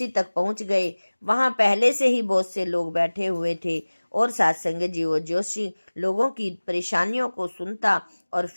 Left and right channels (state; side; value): inverted; both; correlation -1.00